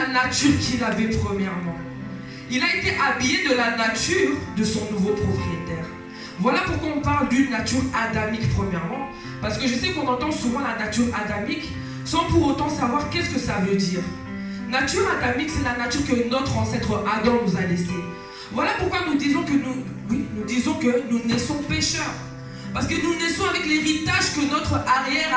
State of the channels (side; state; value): both; identical; correlation 1.00